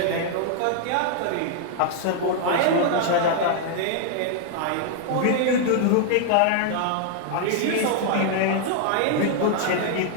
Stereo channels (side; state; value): both; different; correlation -0.01